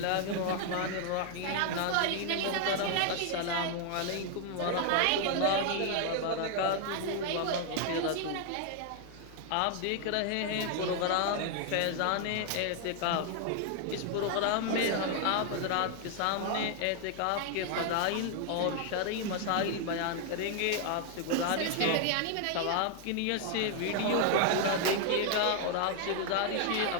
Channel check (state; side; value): different; both; correlation 0.00